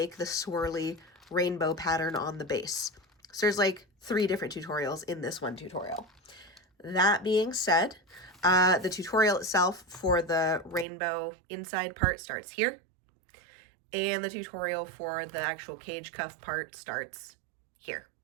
the swirly rainbow pattern on the base. So there's like 3 different tutorials in this one tutorial. That being said, the tutorial itself for the rainbow inside part starts here. And the tutorial for the actual cage cuff part starts here.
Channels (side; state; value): left; drops out; at 10.9 s